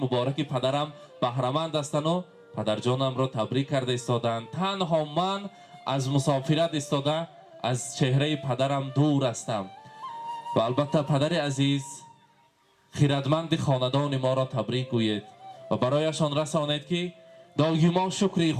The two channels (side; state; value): both; identical; correlation 1.00